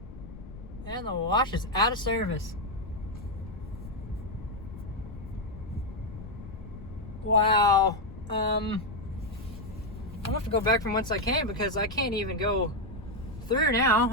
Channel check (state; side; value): noise; left; rumble, 14 dB below the sound